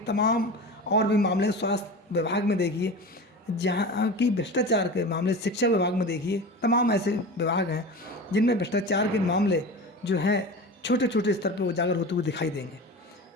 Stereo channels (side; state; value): both; normal; correlation 0.31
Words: और भी मामले स्वास्थ्य विभाग में देखिए, जहाँ की भ्रष्टाचार के मामले शिक्षा विभाग में देखिए, तमाम ऐसे विभाग हैं जिनमें भ्रष्टाचार के मामले जो हैं छोटे छोटे स्तर पर उजागर होते हुए दिखाई देंगे।